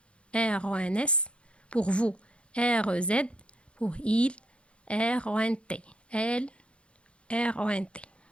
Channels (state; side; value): late; right; 0.058 ms